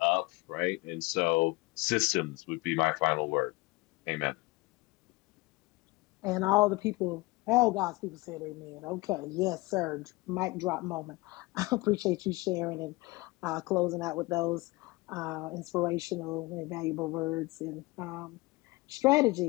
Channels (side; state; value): right; quieter; 22.9 dB